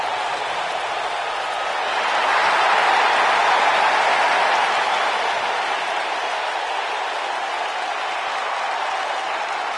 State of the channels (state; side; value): identical; both; correlation 1.00